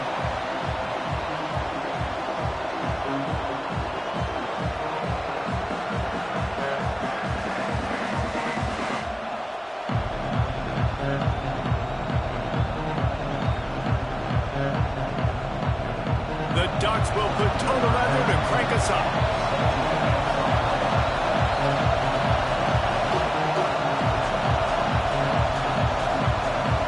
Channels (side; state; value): both; identical; correlation 1.00